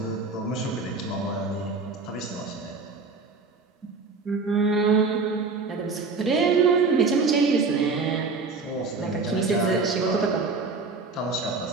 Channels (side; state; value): left; quieter; 4.3 dB